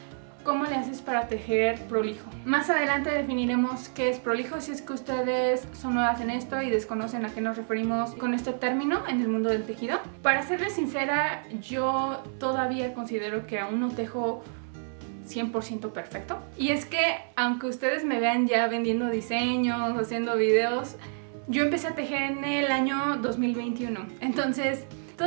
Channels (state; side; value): silent; left; 59 dB below the other